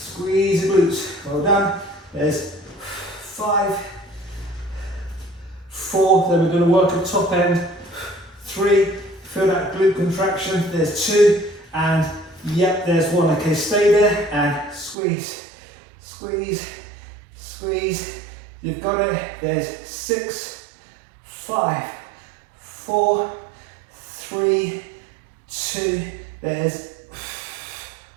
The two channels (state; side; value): drops out; left; at 15.0 s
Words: the glutes. Well done. There's 5, 4, then we're going to work at top end. 3, feel that glute contraction. There's 2, and yep, there's 1. Okay, stay there and squeeze, squeeze, squeeze. You've got it. There's 6, 5, 4, 3, 2, there's